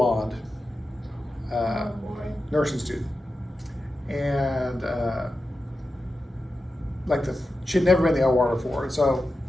nursing student. And she'd never been in the OR before. And so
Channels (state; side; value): normal; both; correlation 0.91